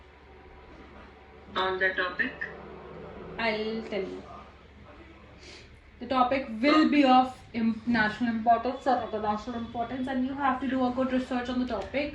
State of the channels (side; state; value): both; identical; correlation 1.00